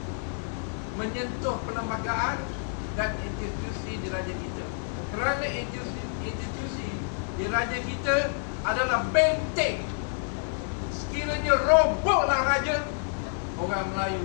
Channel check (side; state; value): right; silent; digital silence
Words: menyentuh perlembagaan dan institusi di raja kita. Kerana institusi di raja kita adalah benteng. Sekiranya robohlah raja, orang